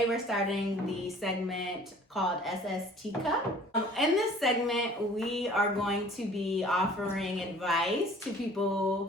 we're starting the segment called SS Teacup. In this segment, we are going to be offering advice to people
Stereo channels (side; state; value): both; normal; correlation 0.50